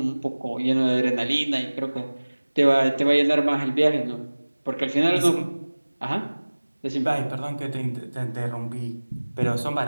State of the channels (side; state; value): both; inverted; correlation -1.00